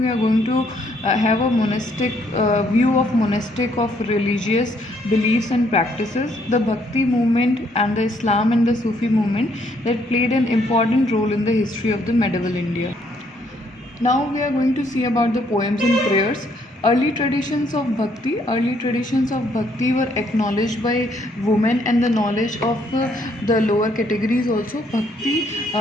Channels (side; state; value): both; normal; correlation 0.69